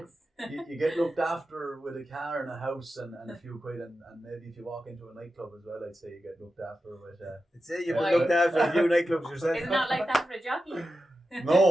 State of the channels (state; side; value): normal; both; correlation 0.91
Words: you get looked after with a car and a house and a few quid and maybe if you walk into a nightclub as well, I'd say you get looked after with. I'd say you've been looked after a few nightclubs yourself. It's not like that for a jockey.